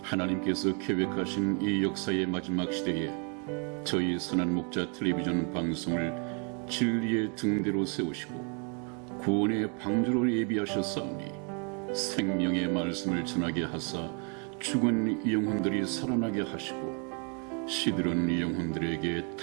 하나님께서 계획하신 이 역사의 마지막 시대에 저희 선한 목자 텔레비전 방송을 진리의 등대로 세우시고 구원의 방주로 예비하셨사오니 생명의 말씀을 전하게 하사 죽은 영혼들이 살아나게 하시고 시들은 영혼들에게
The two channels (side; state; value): left; quieter; 37.7 dB